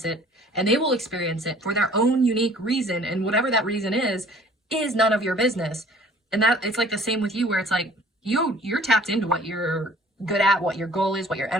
it, and they will experience it for their own unique reason. And whatever that reason is none of your business. And that, it's like the same with you, where it's like, you're tapped into what you're good at, what your goal is, what your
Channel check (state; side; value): normal; both; correlation 0.52